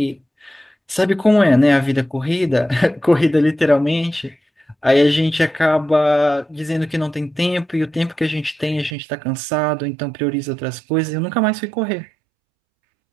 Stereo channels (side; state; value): left; drops out; at 9.0 s